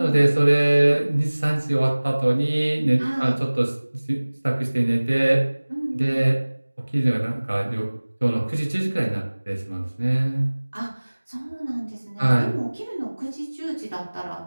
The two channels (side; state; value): both; inverted; correlation -1.00